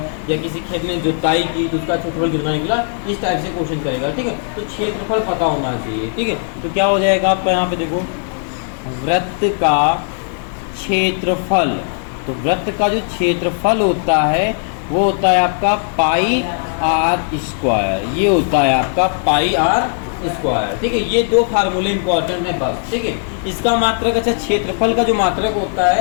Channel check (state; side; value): silent; right; 64 dB below the other